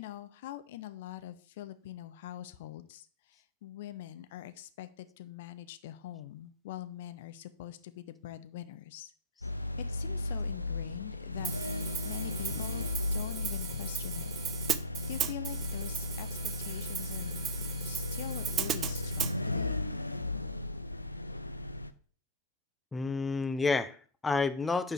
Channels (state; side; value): normal; both; correlation -0.11